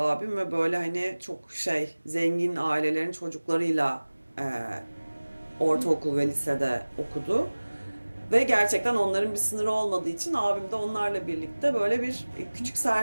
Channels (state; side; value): inverted; both; correlation -1.00